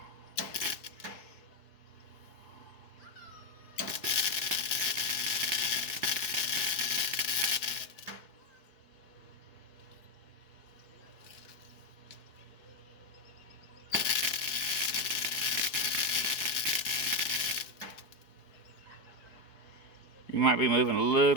You might be moving a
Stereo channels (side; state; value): right; late; 4.7 ms